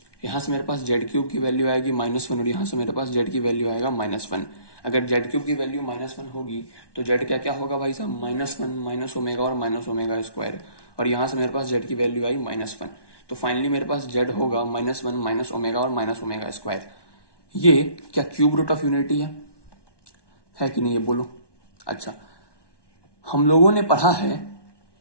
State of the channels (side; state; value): right; late; 1.1 ms